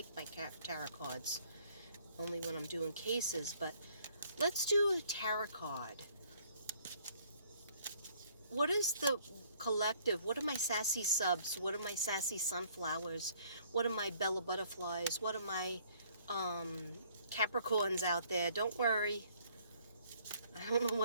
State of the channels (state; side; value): inverted; both; correlation -0.62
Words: my tarot cards, only when I'm doing cases, but let's do a tarot card. What is the collective? What are my sassy subs? What are my sassy sunflowers? What are my Bella butterflies? What are my Capricorns out there? Don't worry. I don't know